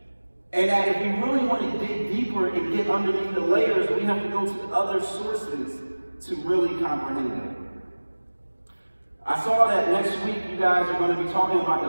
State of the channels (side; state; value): both; inverted; correlation -1.00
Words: And that if we really want to dig deeper and get underneath the layers, we have to go to other sources to really comprehend it. I saw that next week you guys are going to be talking about